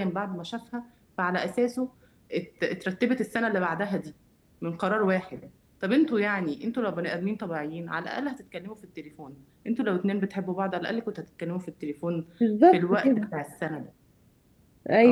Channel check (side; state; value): both; identical; correlation 1.00